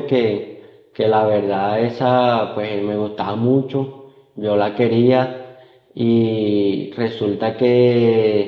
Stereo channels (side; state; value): both; identical; correlation 1.00